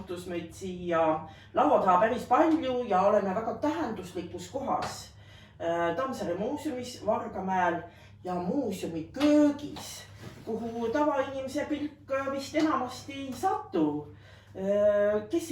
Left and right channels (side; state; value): both; identical; correlation 1.00